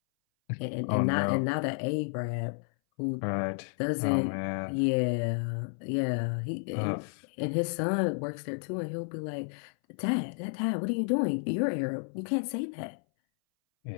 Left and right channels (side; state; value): right; silent; 57 dB below the other